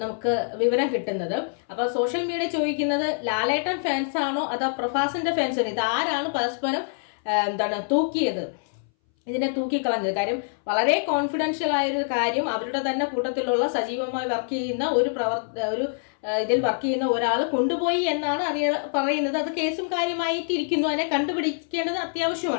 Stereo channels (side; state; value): right; silent; 61 dB below the other